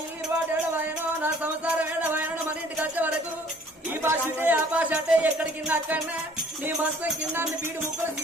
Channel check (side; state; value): both; normal; correlation 0.56